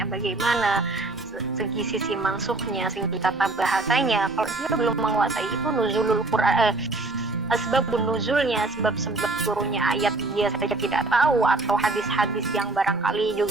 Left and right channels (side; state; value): left; quieter; 3.1 dB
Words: bagaimana, segi sisi mansukhnya, segi tata bahasanya, kalau dia belum menguasai itu, nuzulul Quran, asbabun nuzulnya, sebab-sebab turunnya ayat dia saja tidak tahu, atau hadis-hadis yang barangkali